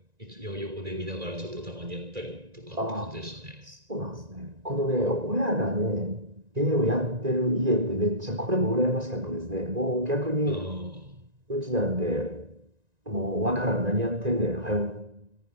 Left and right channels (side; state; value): left; late; 1.9 ms